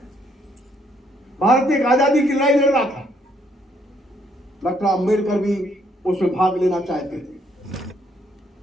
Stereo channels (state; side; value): normal; both; correlation 0.70